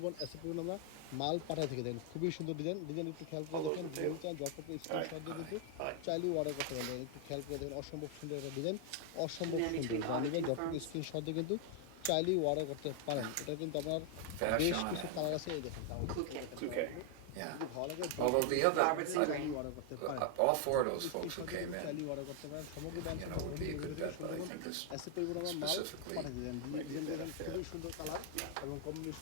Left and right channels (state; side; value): different; both; correlation 0.00